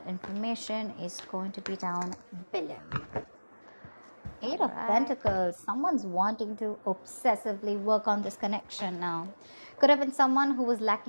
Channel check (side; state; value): both; inverted; correlation -1.00